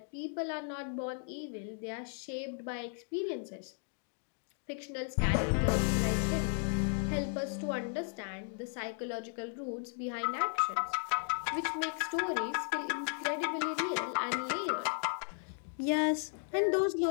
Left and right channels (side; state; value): right; silent; 54 dB below the other